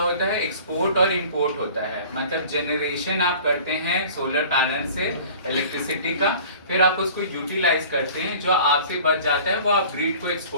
है, एक्सपोर्ट और इंपोर्ट होता है, मतलब जनरेशन आप करते हैं सोलर पैनल से इलेक्ट्रिसिटी का, फिर आप उसको यूटिलाइज करते हैं, जो आपसे बच जाता है वो आप ग्रिड को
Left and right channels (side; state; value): both; inverted; correlation -0.45